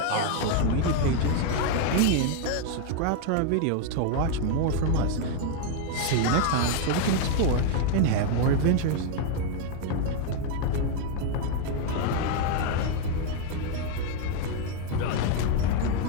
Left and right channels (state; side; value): different; both; correlation 0.01